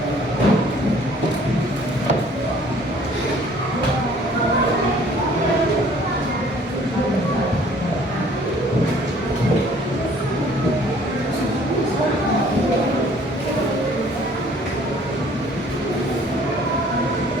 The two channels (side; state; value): both; normal; correlation 0.56